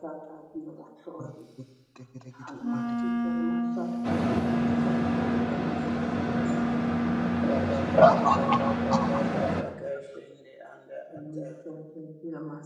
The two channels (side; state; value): both; identical; correlation 1.00